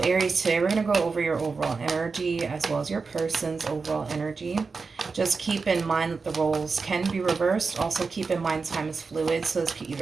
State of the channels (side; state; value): left; quieter; 4.6 dB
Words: Aries, today we're going to go over your overall energy as well as your person's overall energy. Just keep in mind that the roles can be reversed. Also keep in mind time is fluid, so this could